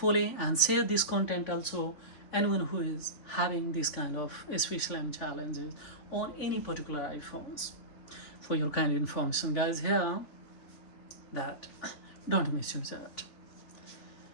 and share this content also anyone who is having this kind of SVSLAM challenges on any particular iPhones. For your kind information, guys, here that don't misuse it.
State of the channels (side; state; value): right; late; 3.7 ms